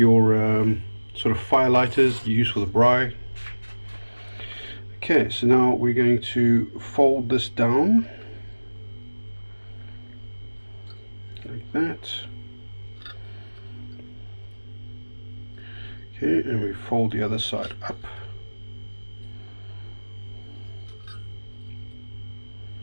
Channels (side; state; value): both; inverted; correlation -1.00